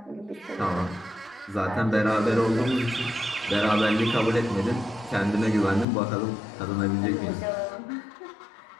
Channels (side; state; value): right; drops out; at 5.9 s